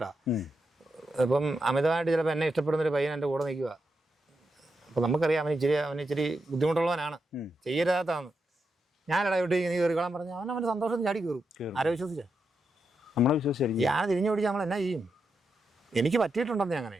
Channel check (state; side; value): normal; both; correlation 0.85